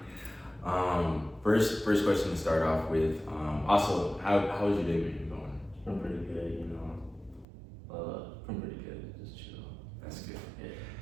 right. First question to start off with. Also, how's your day been going? It's been pretty good, been pretty good. Just chill. That's good.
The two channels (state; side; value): drops out; left; at 7.5 s